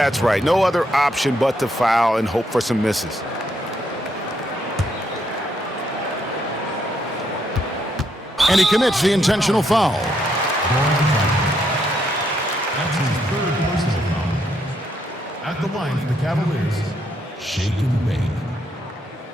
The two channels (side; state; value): both; normal; correlation 0.75